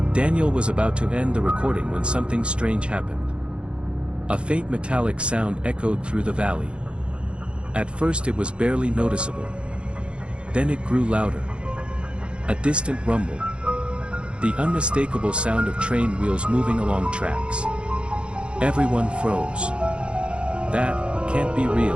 Daniel was about to end the recording when something strange happened. A faint metallic sound echoed through the valley. At first it was barely noticeable. Then it grew louder. A distant rumble. The unmistakable sound of train wheels moving along tracks. Everyone froze. "That can't be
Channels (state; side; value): late; left; 0.057 ms